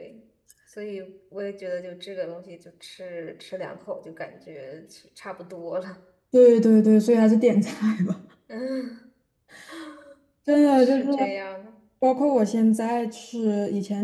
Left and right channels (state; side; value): identical; both; correlation 1.00